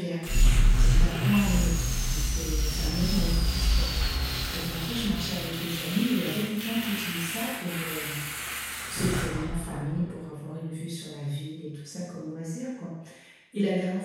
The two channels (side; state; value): both; identical; correlation 1.00